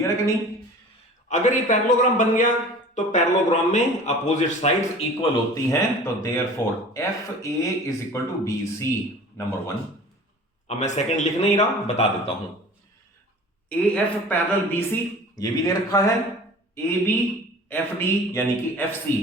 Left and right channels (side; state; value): both; normal; correlation 0.42